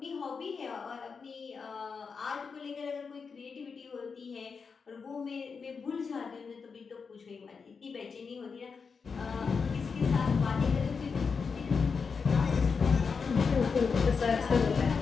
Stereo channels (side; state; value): right; quieter; 5.4 dB